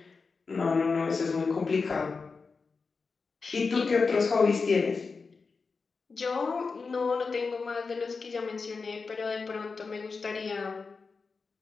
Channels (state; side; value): quieter; right; 4.6 dB